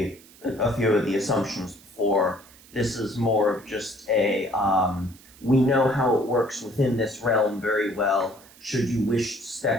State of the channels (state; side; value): noise; right; hiss, 24 dB below the sound